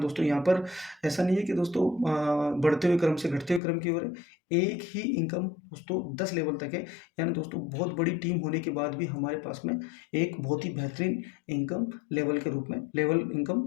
दोस्तों, यहाँ पर ऐसा नहीं है कि दोस्तों बढ़ते हुए क्रम से घटते हुए क्रम की ओर है। एक ही इनकम दोस्तों 10 लेवल तक है। यानी दोस्तों बहुत बड़ी टीम होने के बाद भी हमारे पास में एक बहुत ही बेहतरीन इनकम लेवल के रूप में लेवल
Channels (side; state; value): right; drops out; at 3.6 s